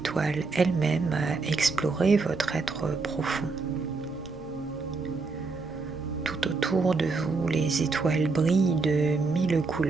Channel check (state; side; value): quieter; left; 4.1 dB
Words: elles-mêmes à explorer votre être profond. Tout autour de vous, les étoiles brillent de 1000